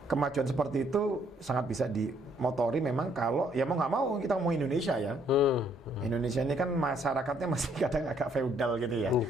kemajuan seperti itu sangat bisa dimotori memang kalau ya mau nggak mau kita mau Indonesia ya. Indonesia ini kan masyarakatnya masih kadang agak feudal gitu ya.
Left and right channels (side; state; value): both; normal; correlation 0.67